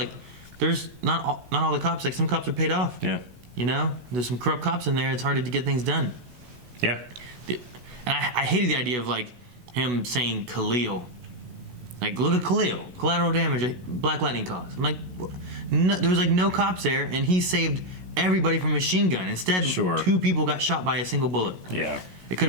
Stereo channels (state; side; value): late; left; 16 ms